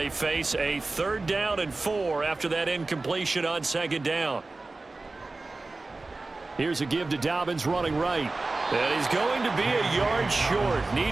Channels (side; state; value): left; quieter; 3.4 dB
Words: face a 3rd down and 4 after that incompletion on 2nd down. Here's a give to Dobbins running right. And he's going to be a yard short.